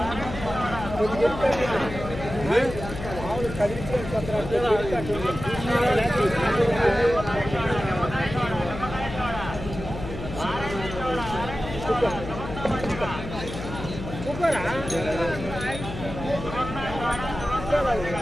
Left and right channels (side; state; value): left; noise; hum, 9 dB below the sound